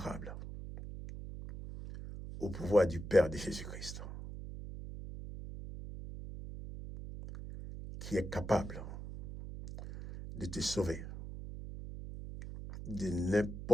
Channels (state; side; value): noise; right; hum, 9 dB below the sound